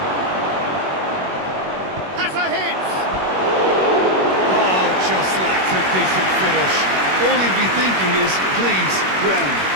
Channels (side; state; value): left; late; 21 ms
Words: Has a hit! Oh, just lacked a decent finish. All he'd be thinking is, please, ground,